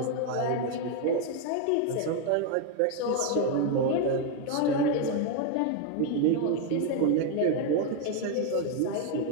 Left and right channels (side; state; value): both; different; correlation 0.01